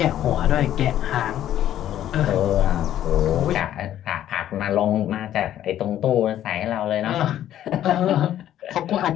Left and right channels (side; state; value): right; quieter; 11.8 dB